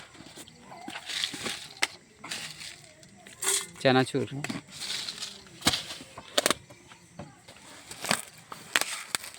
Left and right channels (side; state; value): both; identical; correlation 1.00